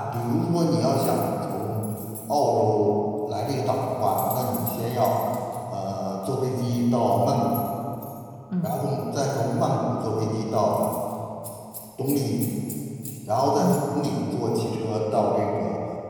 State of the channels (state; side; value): identical; both; correlation 1.00